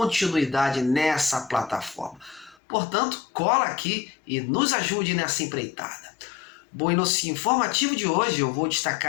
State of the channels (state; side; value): drops out; right; at 2.6 s